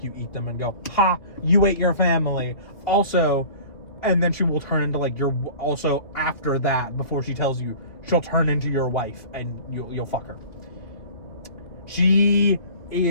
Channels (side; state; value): right; late; 2.6 ms